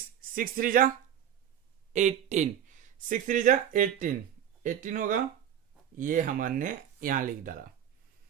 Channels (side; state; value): left; quieter; 9.7 dB